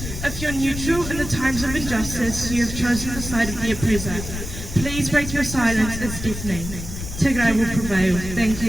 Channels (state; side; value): noise; left; rumble, 8 dB below the sound